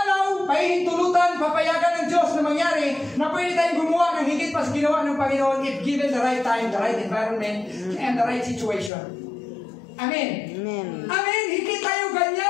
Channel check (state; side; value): drops out; right; at 8.9 s